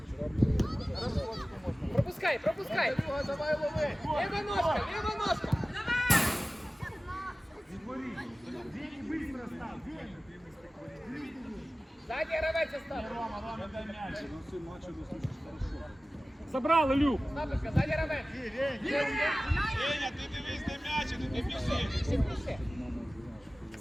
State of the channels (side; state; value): both; normal; correlation 0.96